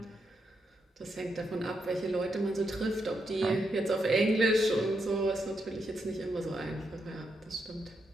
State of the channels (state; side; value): normal; both; correlation 0.81